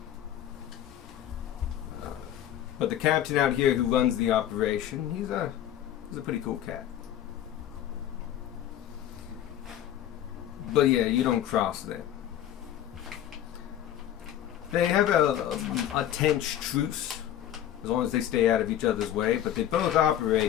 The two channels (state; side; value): quieter; right; 11.3 dB